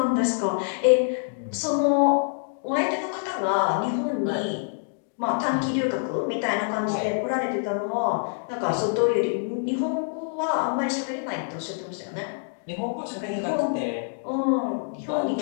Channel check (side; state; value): right; silent; digital silence